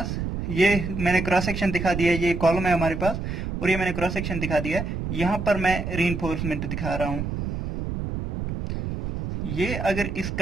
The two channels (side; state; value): right; noise; rumble, 4 dB below the sound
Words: ये मैंने क्रॉस सेक्शन दिखा दिया है, ये कॉलम है हमारे पास और ये मैंने क्रॉस सेक्शन दिखा दिया है। यहां पर मैं रीइंफोर्समेंट दिखा रहा हूं। ये अगर